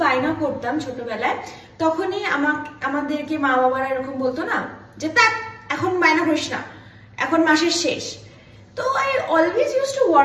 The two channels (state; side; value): identical; both; correlation 1.00